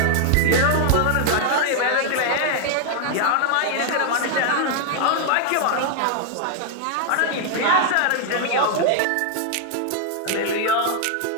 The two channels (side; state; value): both; different; correlation 0.00